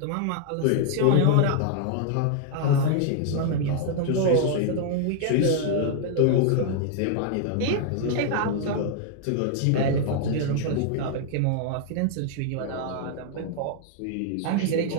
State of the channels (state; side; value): different; both; correlation 0.00